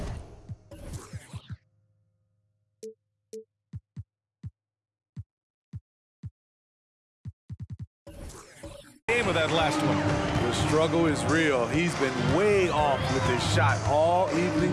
With that last one. The struggle is real. He's been way off with his shot all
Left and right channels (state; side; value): identical; both; correlation 1.00